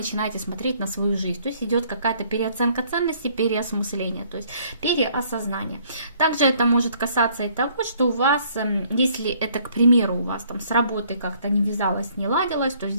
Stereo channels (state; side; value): inverted; both; correlation -0.62